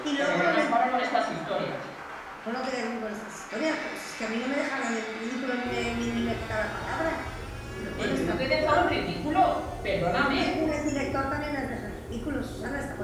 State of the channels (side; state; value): both; identical; correlation 1.00